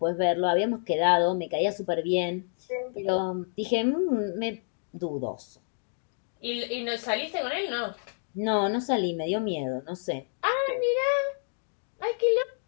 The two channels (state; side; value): silent; right; digital silence